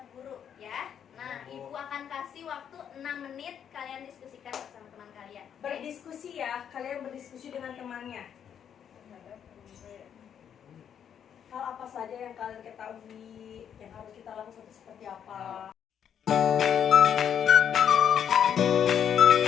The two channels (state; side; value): quieter; right; 8.6 dB